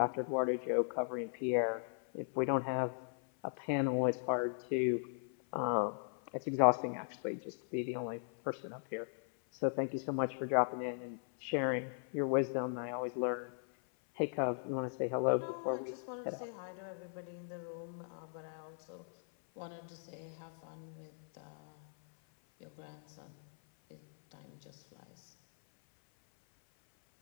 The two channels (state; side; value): silent; right; 52 dB below the other